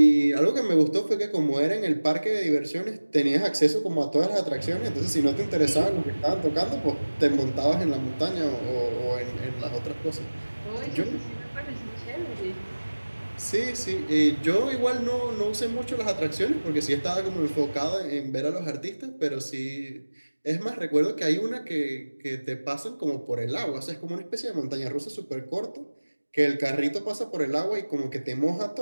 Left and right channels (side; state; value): both; inverted; correlation -1.00